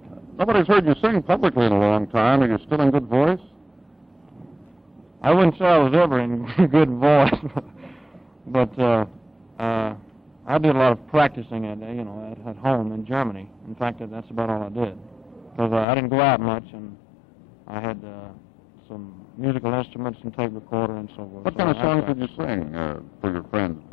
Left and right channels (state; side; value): drops out; right; at 15.9 s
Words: Nobody's heard you sing publicly in a long time. Are you still in good voice? I wouldn't say I was ever in good voice, but I did a lot of practicing at home in Germany. In fact, that's about all I did, because I didn't go out much, and I had some musical instruments and tape recorder and so forth. What kind of songs did you sing for your friends,